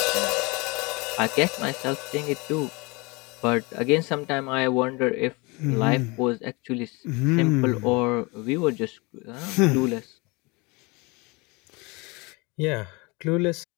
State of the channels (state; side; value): quieter; right; 26.9 dB